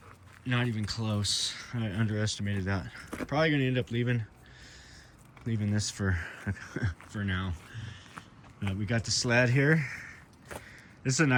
Not even close. I underestimated that. Probably gonna end up leaving this for for now. We got the sled here. This is a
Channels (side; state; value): both; identical; correlation 1.00